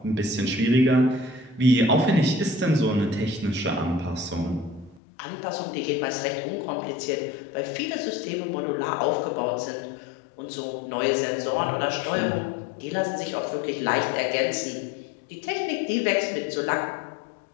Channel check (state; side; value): drops out; right; at 5.0 s